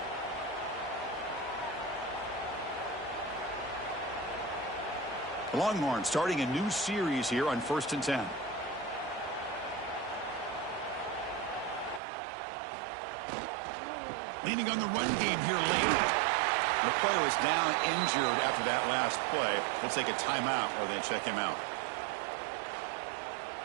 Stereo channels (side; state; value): left; drops out; at 12.0 s